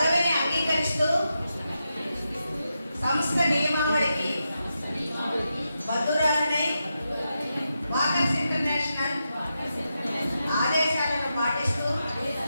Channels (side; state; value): both; inverted; correlation -0.87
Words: అంగీకరిస్తూ సంస్థ నియమావళికి బద్దురాలనే వాకర్స్ ఇంటర్నేషనల్ ఆదేశాలను పాటిస్తూ